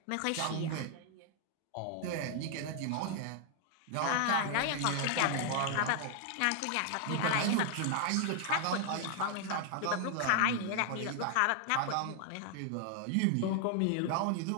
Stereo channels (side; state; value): both; different; correlation 0.00